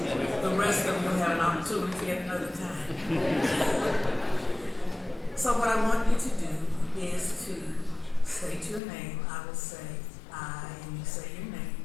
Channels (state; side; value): drops out; right; at 8.8 s